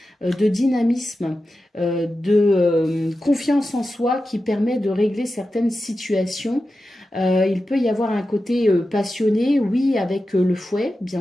de dynamisme, de confiance en soi qui permet de régler certaines situations. Il peut y avoir un côté passionné, oui, avec le fouet,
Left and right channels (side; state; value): both; normal; correlation 0.92